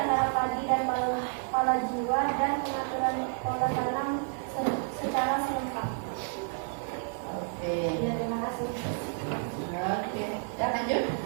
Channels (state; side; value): silent; left; 56 dB below the other